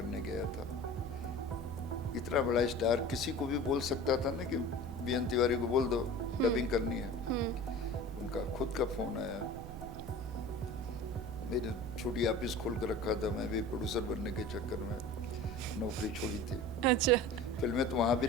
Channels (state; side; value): noise; right; rumble, 10 dB below the sound